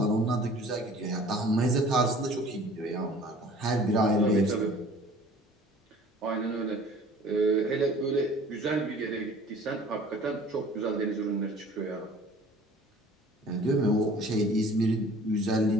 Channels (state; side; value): normal; both; correlation 0.49